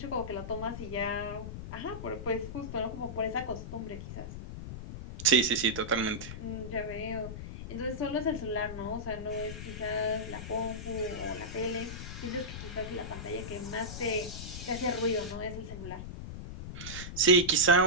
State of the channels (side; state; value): left; noise; rumble, 8 dB below the sound